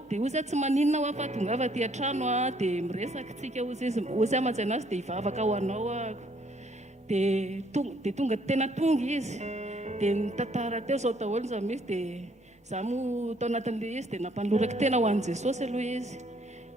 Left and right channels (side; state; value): both; normal; correlation 0.65